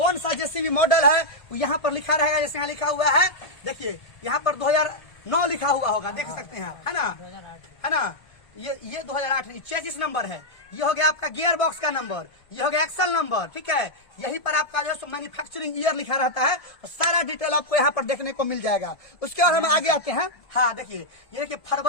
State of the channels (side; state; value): right; late; 1.5 ms